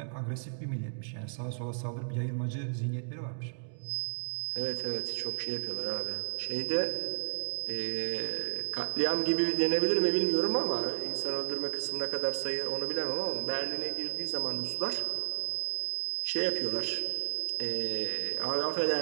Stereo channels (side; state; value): left; silent; digital silence